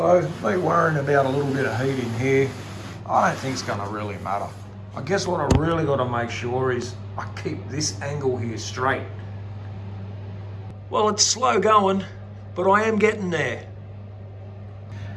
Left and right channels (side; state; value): both; identical; correlation 1.00